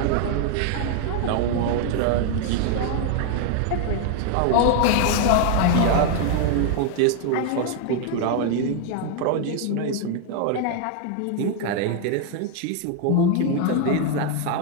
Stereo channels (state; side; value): different; both; correlation 0.00